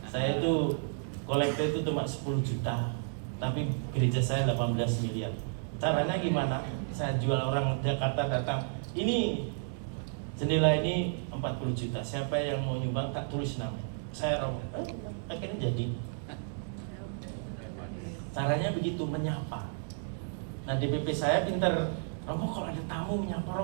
Saya itu kolektor itu cuma 10 juta. Tapi gereja saya 18 miliar. Caranya gimana? Saya jual orang Jakarta datang, ini jendela ini 40 juta. Siapa yang mau nyumbang tak tulis nama. Saya Romo. Akhirnya jadi. Caranya begitu, menyapa. Nah DPP saya pinter. Romo kalau ada tamu menyapa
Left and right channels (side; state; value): left; silent; digital silence